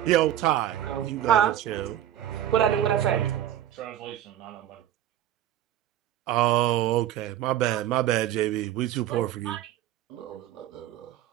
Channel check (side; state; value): left; quieter; 12.1 dB